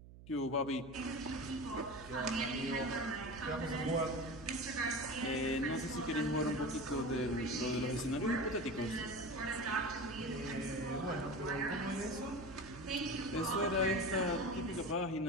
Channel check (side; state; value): right; noise; hum, 17 dB below the sound